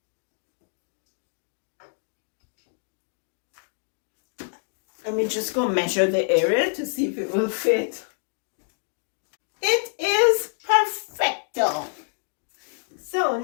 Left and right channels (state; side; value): silent; right; digital silence